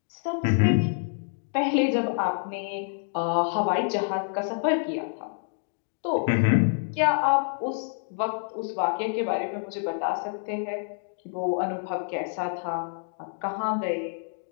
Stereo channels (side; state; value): right; silent; 60 dB below the other